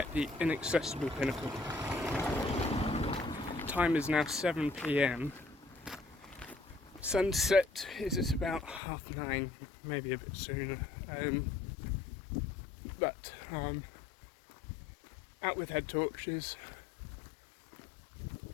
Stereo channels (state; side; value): drops out; right; at 8.8 s